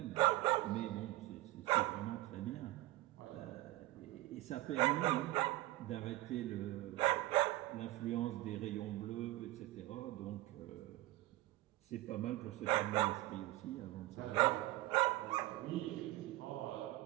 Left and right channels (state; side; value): quieter; left; 17.8 dB